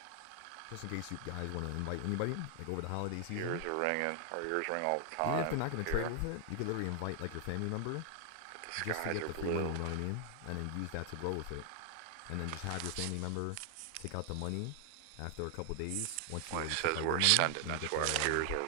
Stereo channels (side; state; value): both; different; correlation 0.00